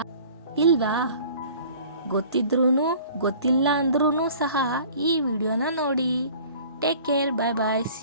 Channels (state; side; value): inverted; both; correlation -0.48